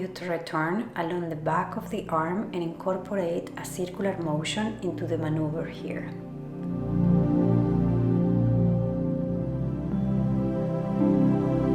to return along the back of the arm and incorporate a circular motion into the maneuver here.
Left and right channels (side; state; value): both; identical; correlation 1.00